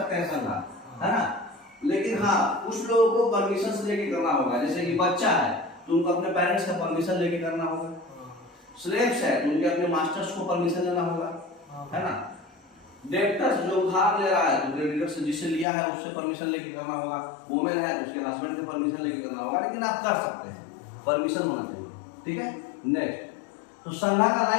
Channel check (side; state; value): right; drops out; at 15.7 s